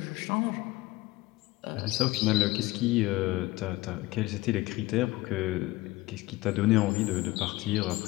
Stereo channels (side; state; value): right; quieter; 19.0 dB